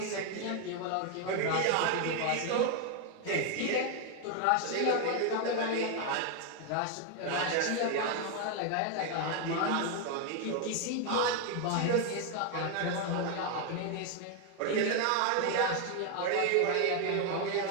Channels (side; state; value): both; different; correlation 0.01